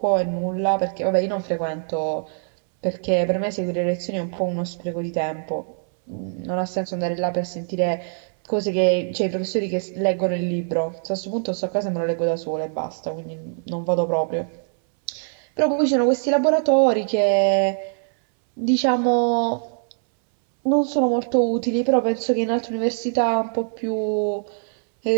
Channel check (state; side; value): silent; left; 63 dB below the other